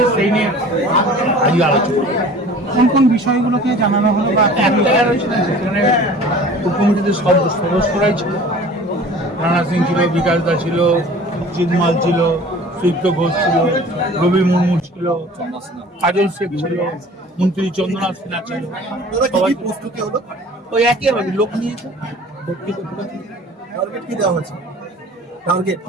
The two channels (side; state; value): both; normal; correlation 0.45